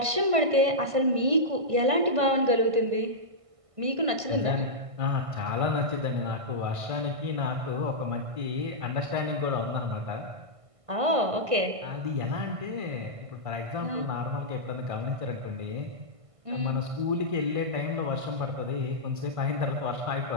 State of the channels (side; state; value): left; late; 1.5 ms